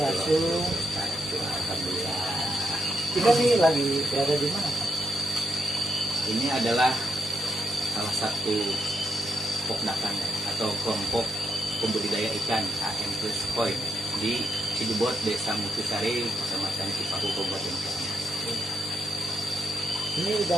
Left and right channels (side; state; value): both; normal; correlation 0.80